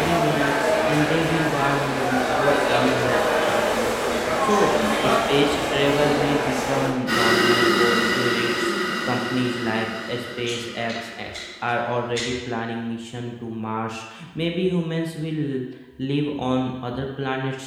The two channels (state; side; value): identical; both; correlation 1.00